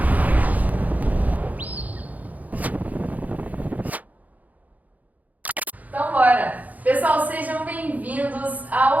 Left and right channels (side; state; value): left; late; 0.078 ms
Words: Então, bora! Pessoal, sejam bem-vindos